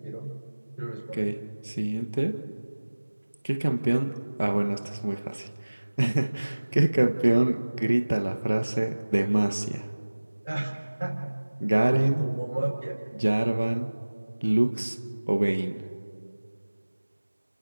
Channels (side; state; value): both; inverted; correlation -1.00